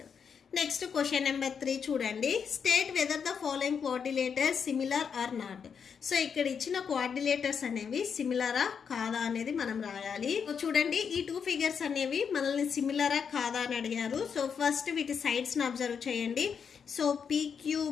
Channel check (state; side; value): quieter; right; 6.7 dB